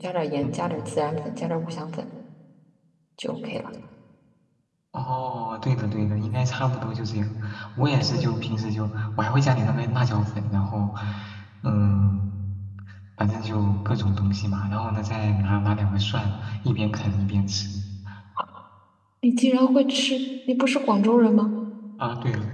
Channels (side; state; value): both; identical; correlation 1.00